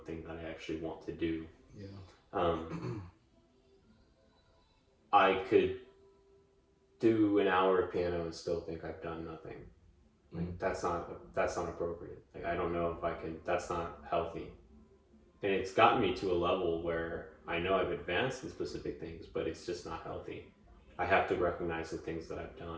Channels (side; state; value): both; identical; correlation 1.00